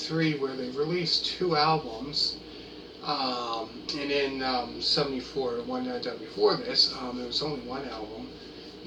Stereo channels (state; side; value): identical; both; correlation 1.00